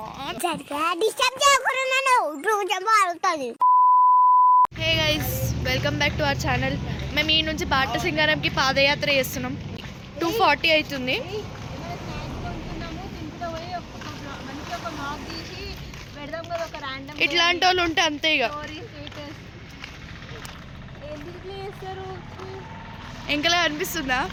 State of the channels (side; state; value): both; identical; correlation 1.00